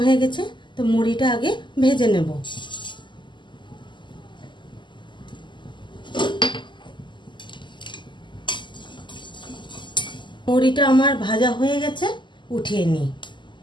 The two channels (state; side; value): late; right; 0.22 ms